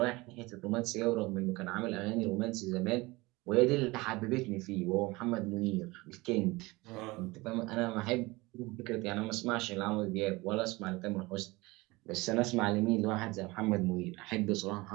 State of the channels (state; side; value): quieter; left; 22.5 dB